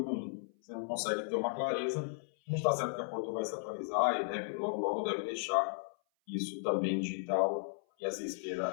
ruim. Você não consegue ter uma clareza. A gente está certo que a Porto vai se atualizar e logo deve deixar isso também digital e essa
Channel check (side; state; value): right; silent; 54 dB below the other